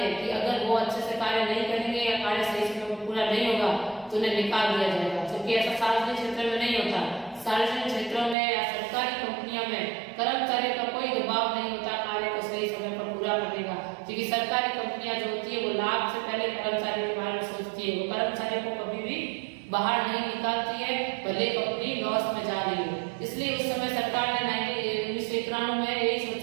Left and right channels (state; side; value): drops out; left; at 8.3 s